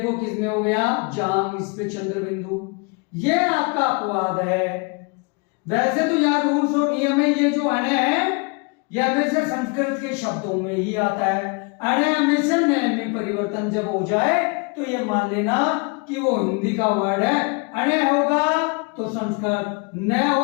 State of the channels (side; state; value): right; quieter; 31.2 dB